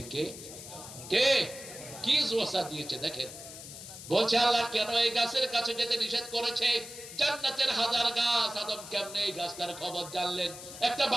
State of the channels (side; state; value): left; noise; hiss, 13 dB below the sound